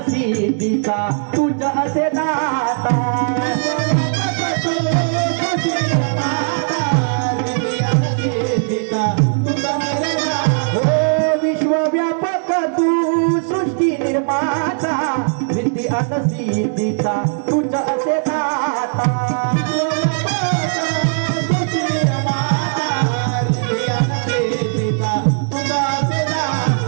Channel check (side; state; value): left; silent; digital silence